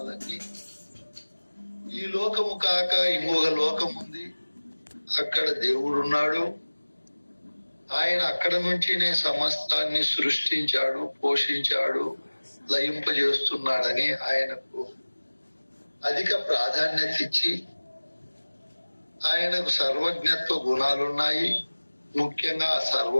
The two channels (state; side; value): inverted; both; correlation -1.00